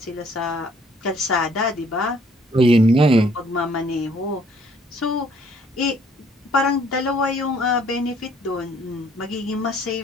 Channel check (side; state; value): both; normal; correlation 0.61